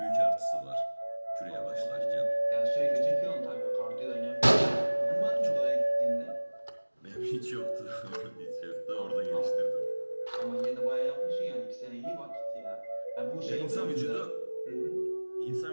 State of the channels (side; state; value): both; inverted; correlation -1.00